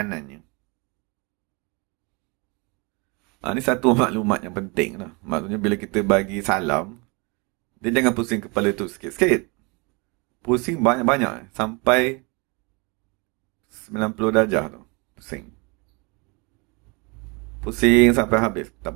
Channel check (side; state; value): left; quieter; 29.7 dB